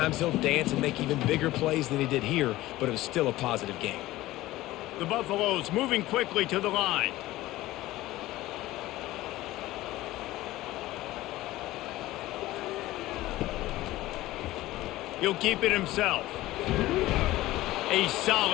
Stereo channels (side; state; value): right; quieter; 16.9 dB